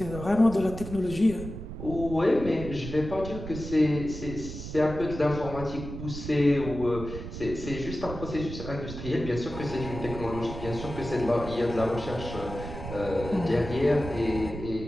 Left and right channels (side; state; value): right; noise; rumble, 9 dB below the sound